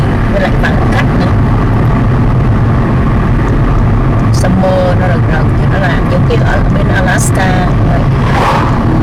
với lại vắng khách nữa. Summer nó rực rực thì nó làm giống kiểu ở bên Alaska vậy.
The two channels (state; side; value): identical; both; correlation 1.00